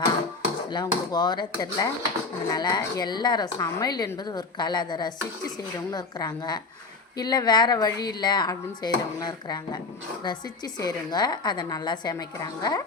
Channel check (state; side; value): quieter; right; 4.0 dB